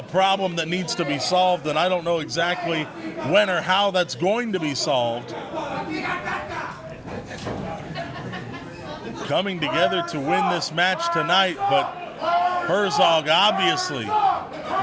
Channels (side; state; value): both; identical; correlation 1.00